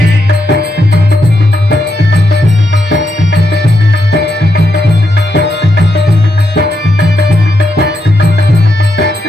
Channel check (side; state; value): both; normal; correlation 0.82